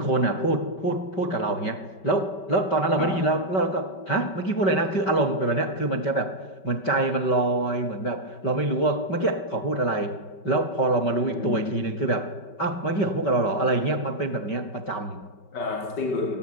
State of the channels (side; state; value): right; late; 5.2 ms